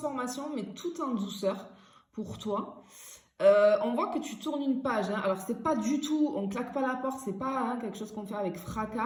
mais tout en douceur pour toi. On voit que tu tournes une page. Hein. Alors, c'est pas du tout, on claque pas la porte, c'est pas quelque chose qu'on fait avec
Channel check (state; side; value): identical; both; correlation 1.00